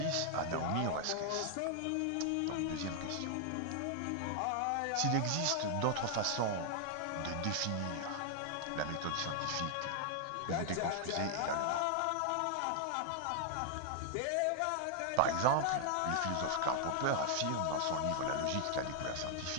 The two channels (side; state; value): both; different; correlation 0.00